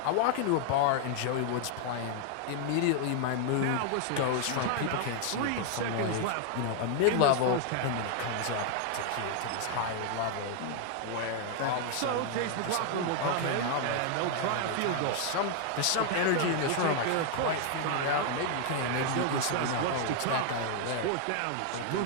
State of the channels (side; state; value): both; different; correlation 0.00